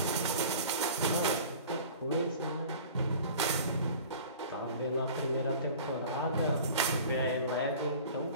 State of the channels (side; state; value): both; inverted; correlation -0.42